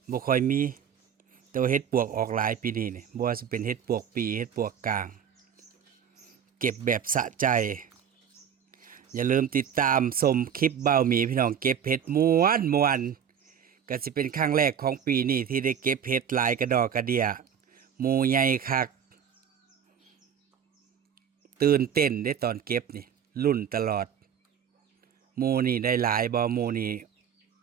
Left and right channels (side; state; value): left; quieter; 8.1 dB